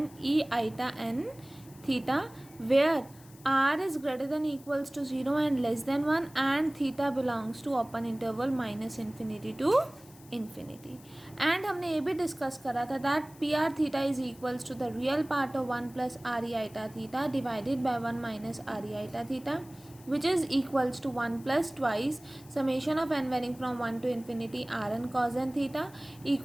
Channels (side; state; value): left; noise; hiss, 23 dB below the sound